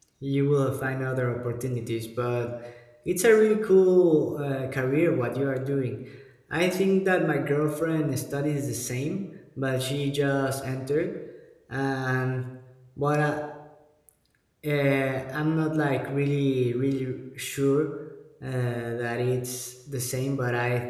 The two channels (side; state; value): both; identical; correlation 1.00